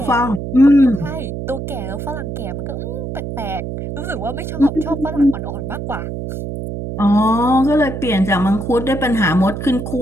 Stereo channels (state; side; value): noise; right; hum, 6 dB below the sound